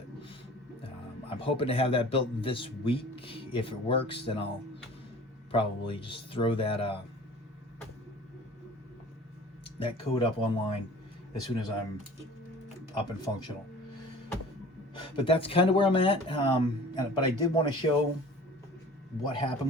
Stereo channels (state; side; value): normal; both; correlation 0.44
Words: I'm hoping to have that built this week. If it works, then I'll probably just throw that code up online as soon as I'm up and functional. But that's kind of where I'm at. But I did want to show what happened